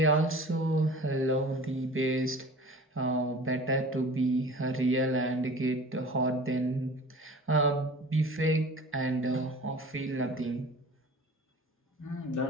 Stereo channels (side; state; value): both; normal; correlation 0.42